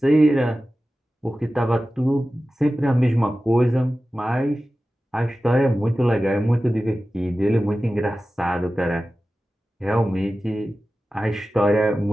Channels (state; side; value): normal; both; correlation 0.95